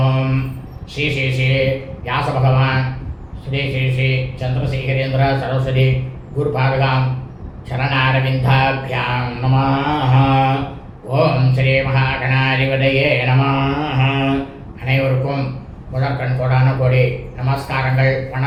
श्री श्री श्री व्यास भगवान श्री श्री श्री चंद्रशेखरेंद्र सरस्वती गुरुपादगां चरणारविंदाभ्यां नमः। ओम श्री महागणाधिपतये नमः। அனைவருக்கும் முதற்கண் கோடான கோடி நமஸ்காரங்கள்,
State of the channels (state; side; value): identical; both; correlation 1.00